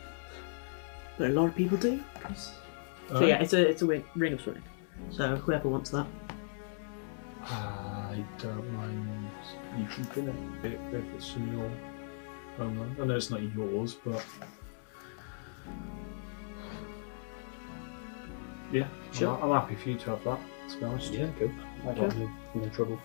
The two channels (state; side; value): silent; right; digital silence